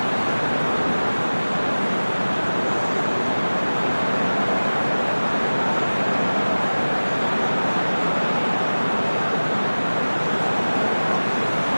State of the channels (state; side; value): inverted; both; correlation -1.00